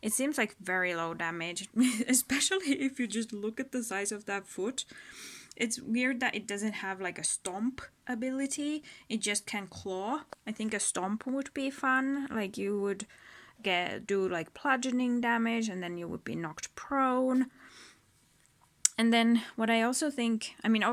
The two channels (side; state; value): both; identical; correlation 1.00